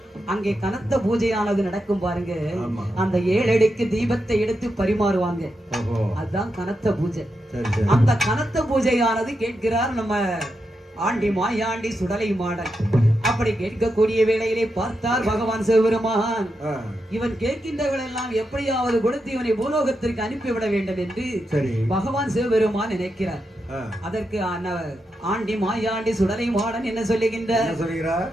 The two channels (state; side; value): normal; both; correlation 0.86